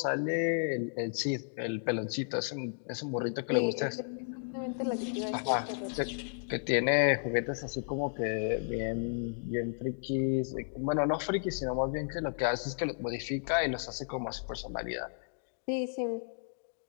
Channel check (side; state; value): right; silent; digital silence